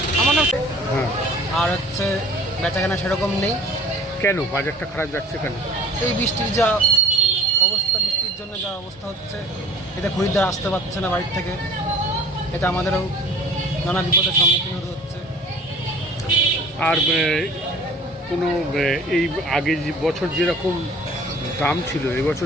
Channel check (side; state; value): both; normal; correlation 0.46